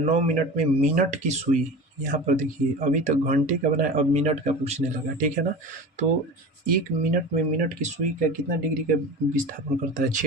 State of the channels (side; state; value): both; normal; correlation 0.32